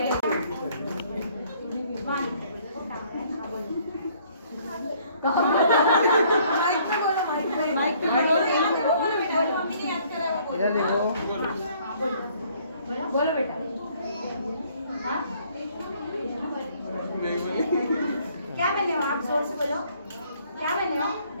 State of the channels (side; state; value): both; inverted; correlation -0.62